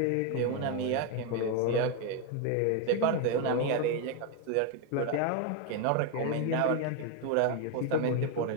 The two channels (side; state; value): both; different; correlation 0.01